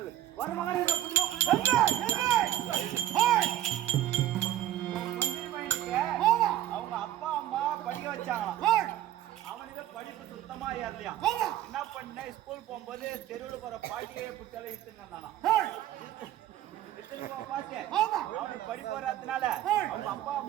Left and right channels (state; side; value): quieter; left; 12.7 dB